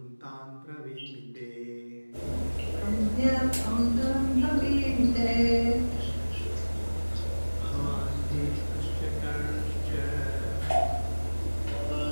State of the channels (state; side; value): inverted; both; correlation -1.00